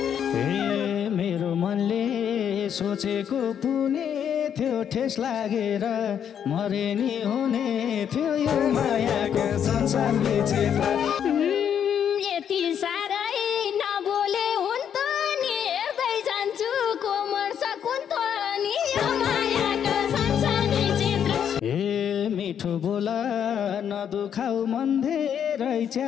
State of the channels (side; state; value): right; quieter; 8.6 dB